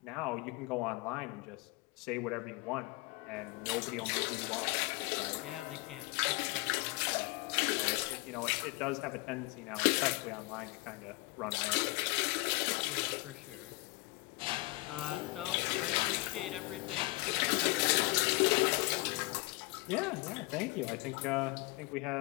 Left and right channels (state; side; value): quieter; right; 24.1 dB